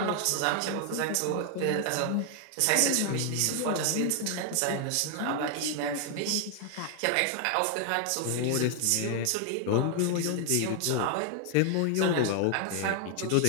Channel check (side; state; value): both; different; correlation 0.00